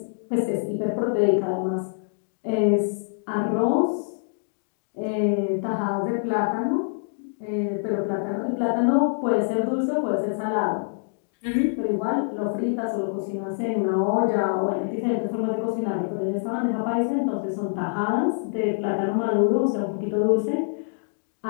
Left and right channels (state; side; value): silent; right; digital silence